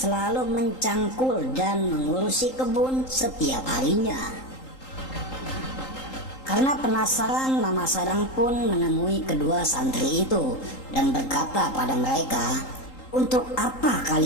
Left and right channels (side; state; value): right; late; 3.8 ms